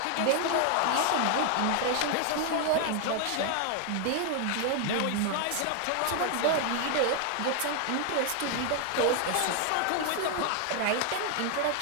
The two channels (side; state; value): both; different; correlation 0.00